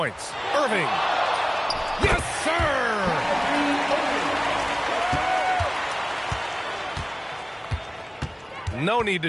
Irving. Yes, sir! No need to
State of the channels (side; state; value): both; identical; correlation 1.00